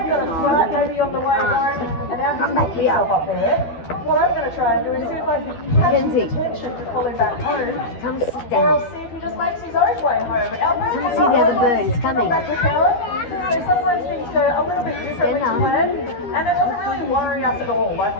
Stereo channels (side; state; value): right; late; 12 ms